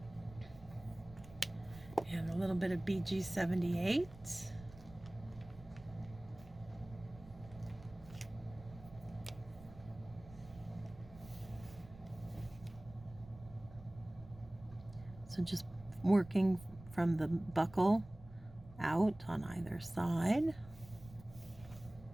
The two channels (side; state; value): right; noise; rumble, 19 dB below the sound